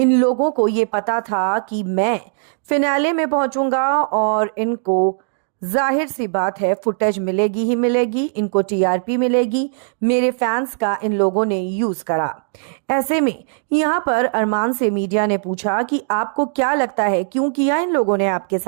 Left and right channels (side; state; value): left; silent; digital silence